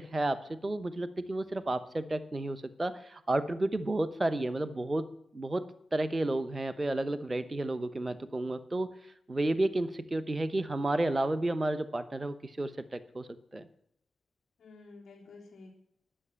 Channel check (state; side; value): normal; both; correlation 0.96